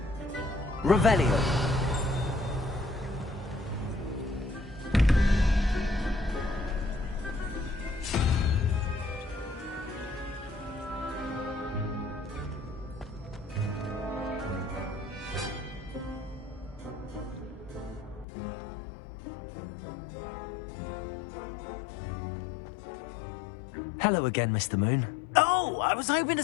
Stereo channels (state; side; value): drops out; right; at 18.2 s